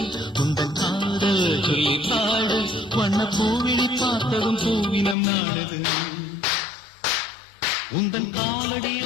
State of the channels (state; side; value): drops out; right; at 5.2 s